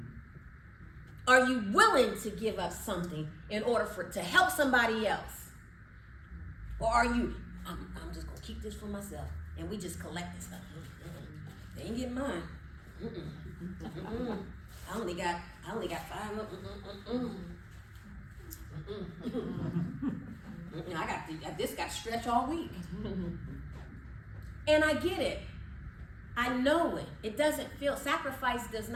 Are you willing to give up something in order to help somebody else? Or are you, I'm just gonna keep this for myself and we just collect this stuff? They ain't getting mine. I only got 5. This got stretched all week. And I get it. I know it. It doesn't feel, sacrifice does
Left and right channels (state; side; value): identical; both; correlation 1.00